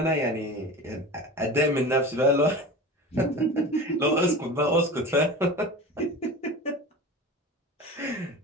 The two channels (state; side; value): normal; both; correlation 0.32